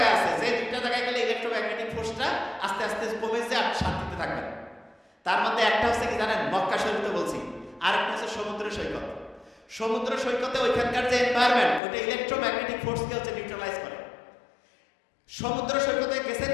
আছে, যে দুইটা জায়গায় গেলে ইলেকট্রোম্যাগনেটিক ফোর্সটা আস্তে আস্তে কমে যায়, আপনি শান্তিতে থাকবেন। তার মধ্যে একটা হচ্ছে কি জানেন? মক্কা শরীফে বলছি। আর একটা হচ্ছে সমুদ্র সৈকত। সমুদ্র সৈকতে ওইখানকার যে এনভায়রনমেন্ট, ওইটা ইলেকট্রোম্যাগনেটিক ফোর্সকে হচ্ছে নিউট্রালাইজ করে। সমুদ্র সৈকতে গেছেন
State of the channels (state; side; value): drops out; right; at 11.8 s